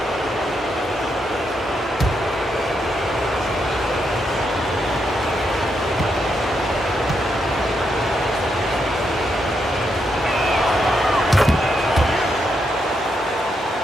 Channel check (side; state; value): both; normal; correlation 0.81